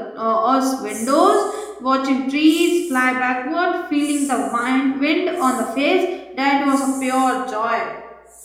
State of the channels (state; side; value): identical; both; correlation 1.00